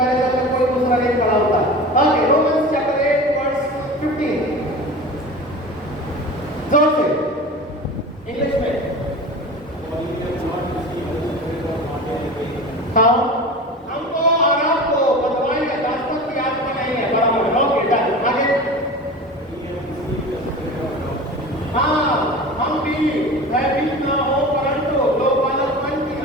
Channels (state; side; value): normal; both; correlation 0.33